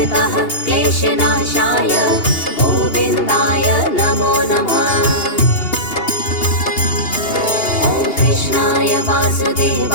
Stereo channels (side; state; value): right; late; 2.8 ms